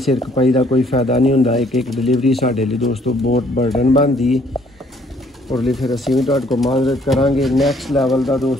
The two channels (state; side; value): normal; both; correlation 0.63